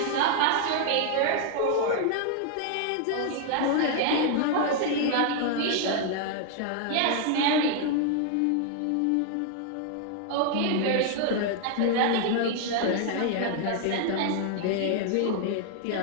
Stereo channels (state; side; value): different; both; correlation 0.00